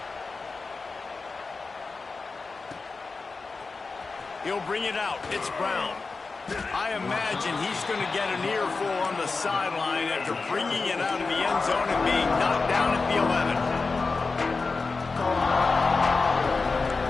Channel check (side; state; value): right; quieter; 4.1 dB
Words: He'll bring it out. It's Brown. I imagine he's going to get an earful on the sideline after bringing it out of the end zone and being knocked down at the 11.